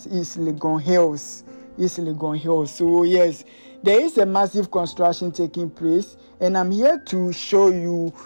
East Legon Hills. East Legon Hills. So yes, there is a massive construction taking place, and I'm here to show you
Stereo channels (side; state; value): both; inverted; correlation -1.00